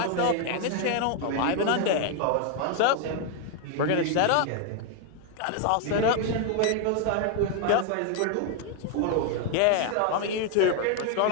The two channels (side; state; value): both; different; correlation 0.01